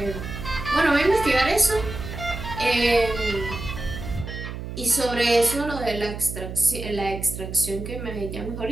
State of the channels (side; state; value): right; noise; hum, 8 dB below the sound